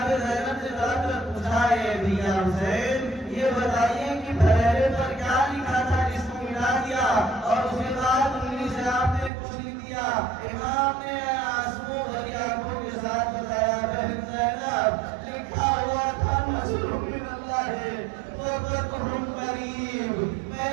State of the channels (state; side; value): drops out; left; at 9.3 s